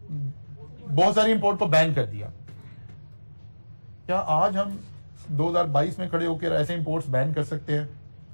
बहुत सारी इंपोर्ट को बैन कर दिया, क्या आज हम 2022 में खड़े होकर ऐसे इंपोर्ट्स बैन कर सकते हैं?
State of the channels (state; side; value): inverted; both; correlation -1.00